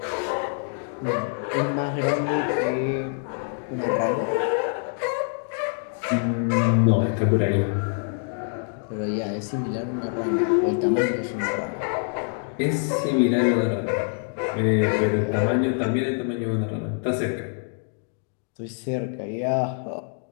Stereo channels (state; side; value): silent; right; 57 dB below the other